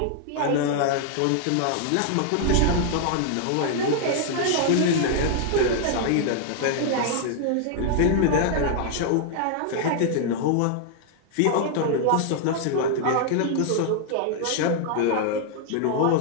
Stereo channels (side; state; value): both; different; correlation 0.00